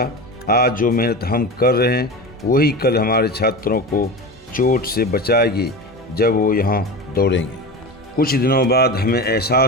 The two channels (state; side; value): normal; both; correlation 0.27